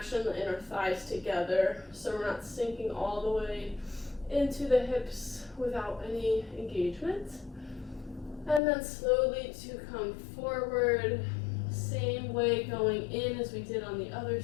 the inner thighs together so we're not sinking all the way into the hips without any engagement. And then slowly to come forward, same way going in as we did on the other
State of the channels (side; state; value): right; drops out; at 8.6 s